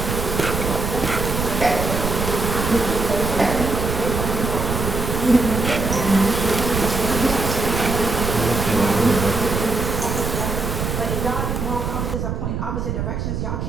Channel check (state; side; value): noise; right; rumble, 2 dB below the sound